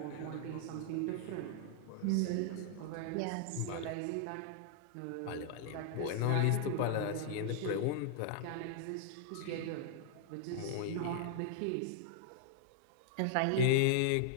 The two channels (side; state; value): both; different; correlation -0.01